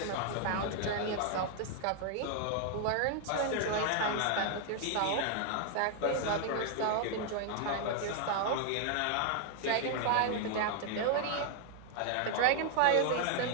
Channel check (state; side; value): different; both; correlation 0.00